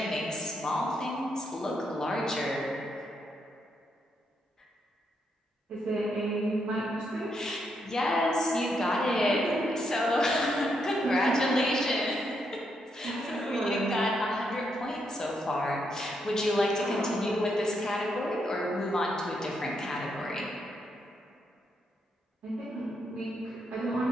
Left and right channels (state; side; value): normal; both; correlation 0.79